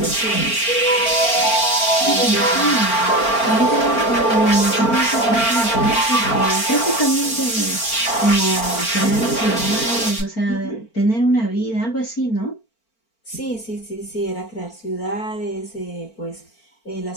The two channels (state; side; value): late; right; 4.4 ms